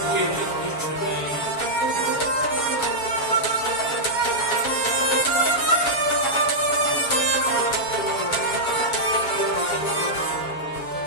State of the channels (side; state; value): right; late; 7.2 ms